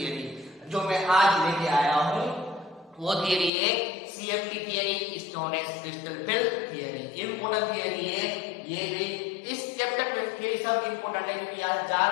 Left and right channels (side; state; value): right; drops out; at 3.5 s